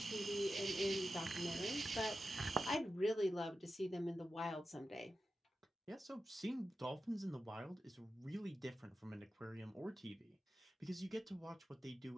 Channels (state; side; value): normal; both; correlation 0.92